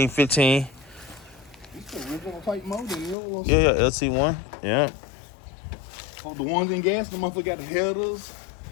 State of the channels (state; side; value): drops out; right; at 3.2 s